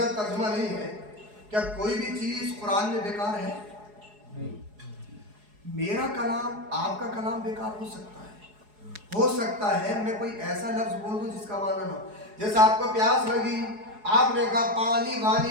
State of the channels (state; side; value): late; left; 4.8 ms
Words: جب ترجمہ نہیں ہے کیا کوئی بھی چیز قرآن میں بیکار ہے؟ میرا کلام آپ کا کلام بیکار ہو سکتا ہے، ہو سکتا ہے میں کوئی ایسا لفظ بول دوں جس کا معنی نہ ہو۔ جیسے آپ کو پیاس لگی، آپ نے کہا پانی